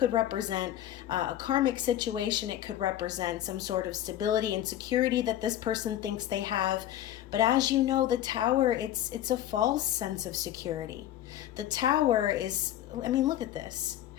represent a karmic situation. It could represent some sort of stability and security that this person thinks they have. But as you know, the tower, it's a false sense of security. The tower is, I mean, look at this.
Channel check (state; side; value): quieter; right; 12.4 dB